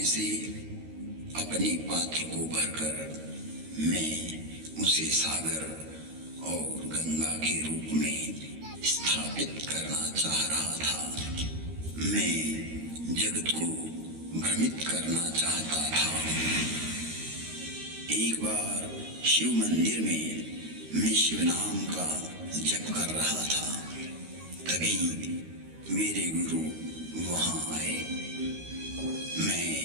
से अपने पात्र को भरकर मैं उसे सागर और गंगा के रूप में स्थापित करना चाह रहा था। मैं जगत को भ्रमित करना चाहता था। एक बार शिव मंदिर में मैं शिव नाम का जप कर रहा था, तभी मेरे गुरु वहां आए। मैं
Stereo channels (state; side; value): late; left; 13 ms